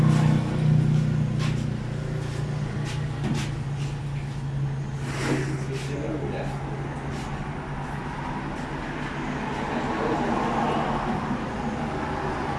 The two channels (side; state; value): both; identical; correlation 1.00